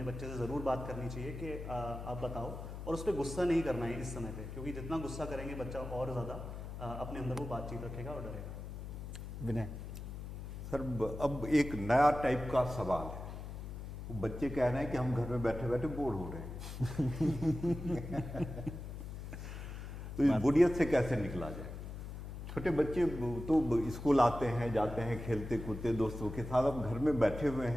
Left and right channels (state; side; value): noise; left; hum, 8 dB below the sound